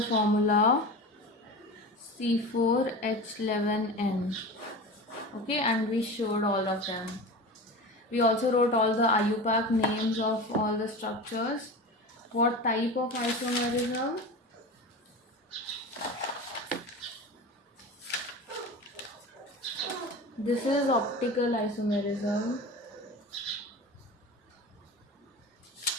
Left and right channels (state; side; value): normal; both; correlation 0.30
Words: formula C4H11N. Okay, and we showed all of them. We also wrote all the IUPAC names of all the structures. What type of isomerism? This is optical isomerism.